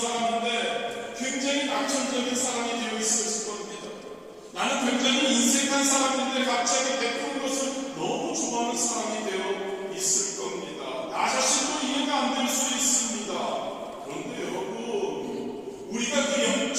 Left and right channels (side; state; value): both; identical; correlation 1.00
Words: 굉장히 낙천적인 사람이 되어 있었을 겁니다. 나는 굉장히 인색한 사람인데 갑자기 베푸는 것을 너무 좋아하는 사람이 되어 있을 겁니다. 나 자신도 이해가 안 될 수 있습니다. 그런데 여러분, 우리가 그 영적